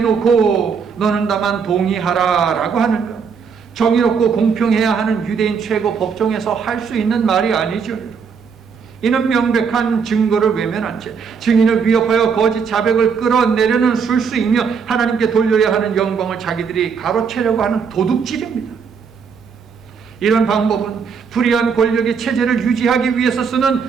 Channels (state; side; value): quieter; left; 6.1 dB